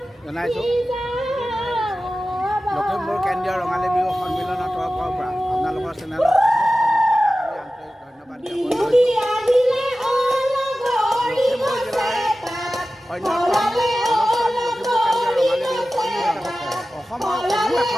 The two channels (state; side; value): normal; both; correlation 0.95